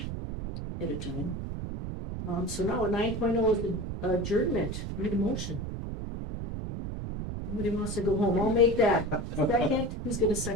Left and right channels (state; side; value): noise; right; rumble, 5 dB below the sound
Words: at a time. So now 9.0 is the adjournment. Need a motion. Somebody wants to go home, I'll make that. Second, who's gonna